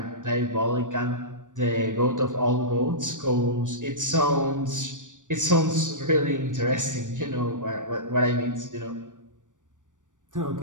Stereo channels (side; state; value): left; late; 0.87 ms